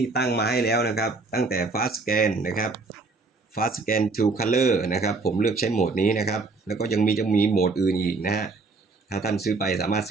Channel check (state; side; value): quieter; left; 3.8 dB